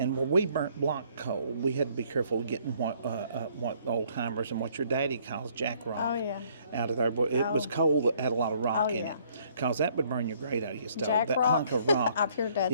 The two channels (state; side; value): inverted; both; correlation -0.63